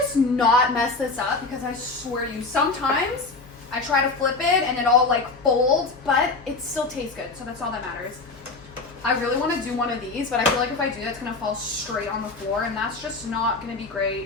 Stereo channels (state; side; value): quieter; right; 3.7 dB